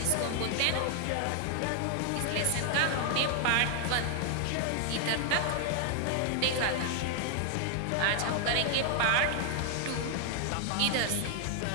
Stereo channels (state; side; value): different; both; correlation 0.00